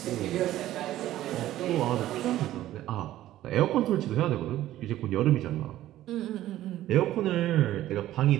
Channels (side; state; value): left; quieter; 14.0 dB